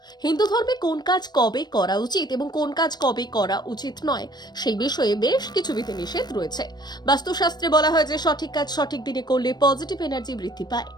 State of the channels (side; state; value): right; late; 0.20 ms